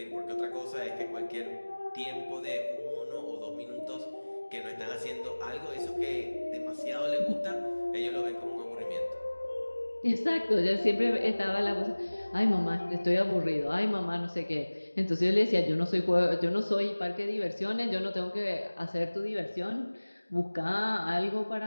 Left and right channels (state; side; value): inverted; both; correlation -1.00